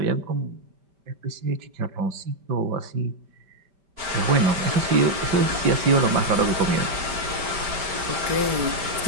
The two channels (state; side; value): late; left; 5.1 ms